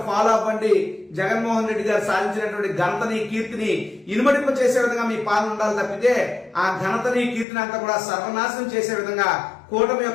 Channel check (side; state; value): right; drops out; at 7.5 s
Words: ఫాలో అవ్వండి. జగన్మోహన్ రెడ్డి గారు సాధించినటువంటి ఘనతని, కీర్తిని ఇనుమడింప చేసే విధంగా మీ పాలన ఉండాలి తప్పితే ఆ ఘనతని, కీర్తిని అంతా కూడా సర్వనాశనం చేసే విధంగా కూటమి